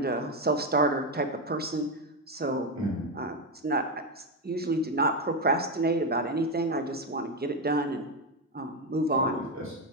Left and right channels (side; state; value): both; normal; correlation 0.09